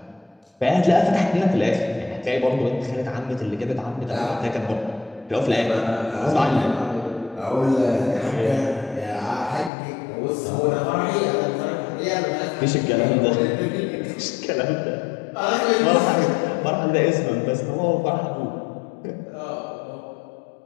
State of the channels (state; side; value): drops out; right; at 9.7 s